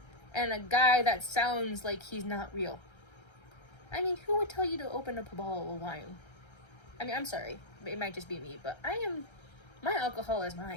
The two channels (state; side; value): late; right; 1.3 ms